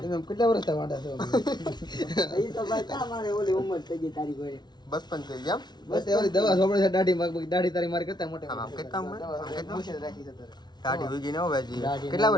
તમે કેટલા વર્ષ વાંઢા છો એ તો ભાઈ ક્યાં મારે ઓલી ઉંમર થઈ ગઈ તારી કોઈ. બસ પણ થઈ ગયા. બસ એવી દવા સોપડે છે દાઢી દાઢી તારી મારી કરતા મોટે આમ કેટલા ઉંમર? મુશ્કેલ રાખી છે તારે દાઢી ઉગી ને હો ભાઈ. કેટલા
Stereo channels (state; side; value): late; right; 0.20 ms